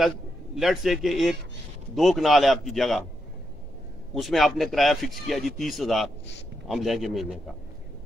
لیٹ سے کہ 1-2 کنال ہے آپ کی جگہ، اس میں آپ نے کرایہ فکس کیا جی 30,000 ہم لیں گے مہینے کا،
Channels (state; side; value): normal; both; correlation 0.83